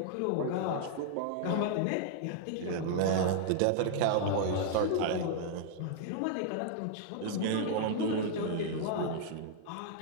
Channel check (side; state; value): both; different; correlation -0.01